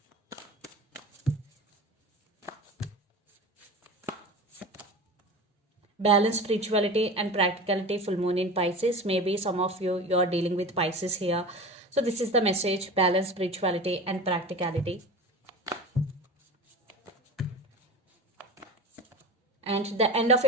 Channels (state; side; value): normal; both; correlation 0.32